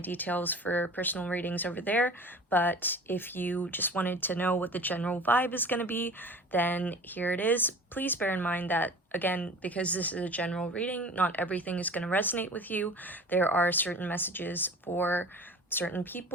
details for personal readings over there. But if you just wanted to know what the general vibe is going to be, then here it is. Please bear in mind that, again, because this is a general reading, not everything is going to resonate with you. There are certain messages for certain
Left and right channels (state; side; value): normal; both; correlation 0.40